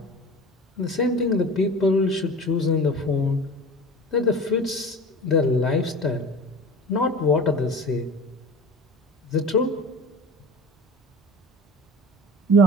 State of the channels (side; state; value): both; normal; correlation 0.36